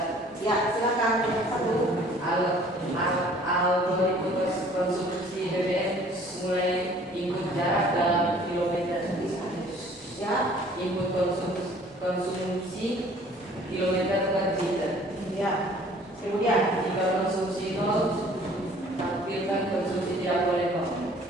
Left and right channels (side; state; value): both; normal; correlation 0.54